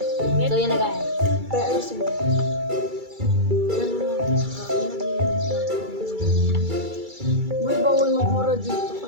yan na guys. Pero ayusin mo. Uy, bawal magmura dito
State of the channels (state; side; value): late; left; 2.3 ms